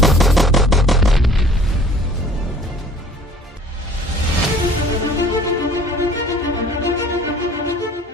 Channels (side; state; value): both; normal; correlation 0.51